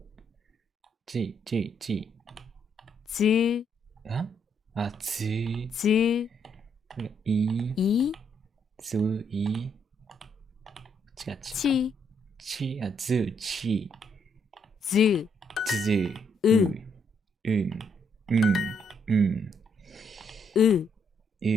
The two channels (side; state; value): both; normal; correlation 0.73